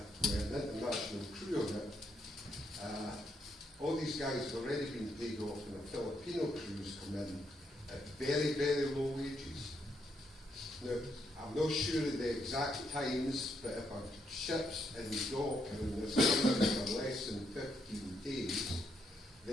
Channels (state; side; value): normal; both; correlation 0.76